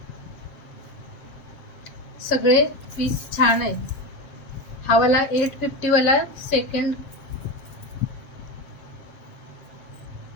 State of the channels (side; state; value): right; late; 7.3 ms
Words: सगळे पीस छान आहेत. हा वाला 850 वाला सेकंड.